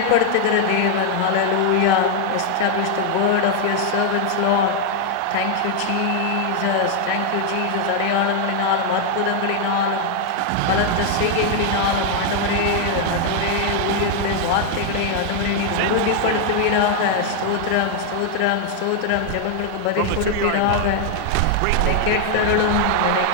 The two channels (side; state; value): both; different; correlation 0.00